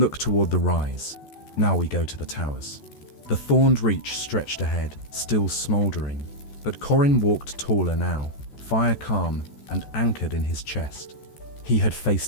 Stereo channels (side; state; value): right; late; 14 ms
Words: toward the rise. "Now we go to the towers." The thorned reach stretched ahead, still smoldering. But Corin walked taller now, fire calm and anchored in his chest. He had